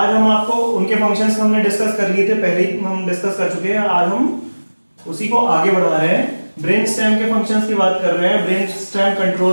हम आपको उनके फंक्शंस हमने डिस्कस कर लिए थे, पहले ही हम डिस्कस कर चुके हैं। आज हम उसी को आगे बढ़ा रहे हैं। ब्रेन स्टेम के फंक्शंस की बात कर रहे हैं। Brain stem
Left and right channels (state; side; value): inverted; both; correlation -1.00